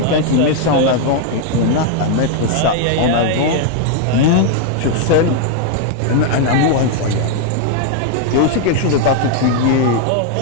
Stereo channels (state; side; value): different; both; correlation 0.00